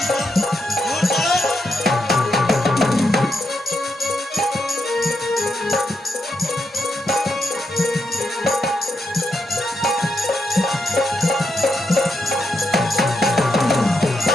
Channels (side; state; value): both; normal; correlation 0.82